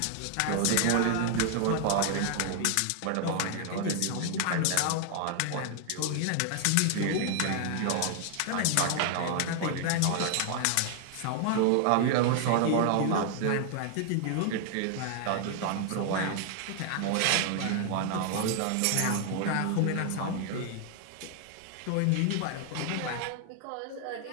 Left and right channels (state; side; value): different; both; correlation 0.00